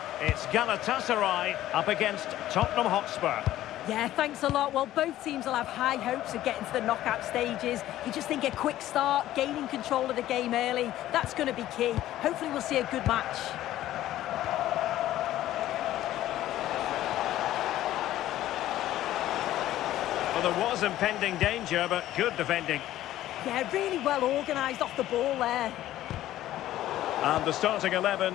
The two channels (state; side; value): quieter; right; 13.9 dB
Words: It's Gatasaray up against Tottenham Hotspur. Yeah, thanks a lot. Well, both teams will have high hopes of getting to the knockout stages. You just think a quick start, gaining control of the game early, that's going to be key. Hopefully we'll see a good match. Well, there was impending danger, but good defending. Yeah, really well organised off the ball there. And the starting